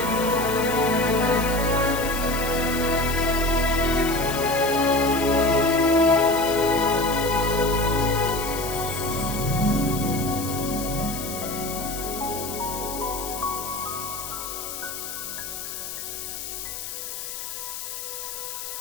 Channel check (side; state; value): left; noise; hiss, 7 dB below the sound